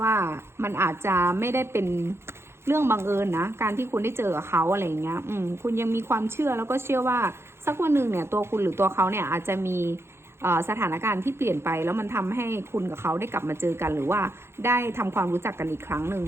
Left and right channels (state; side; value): late; left; 0.12 ms